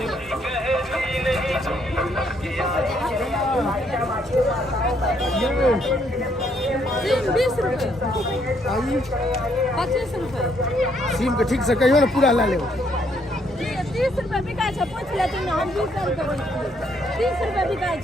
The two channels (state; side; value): normal; both; correlation 0.71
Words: सीम के ठीक से कहियो ना पूरा ला ले। 30 रुपए बिकाय छै, पूछ लेती ना हम 20 रुपए 30 रुपए बिकाय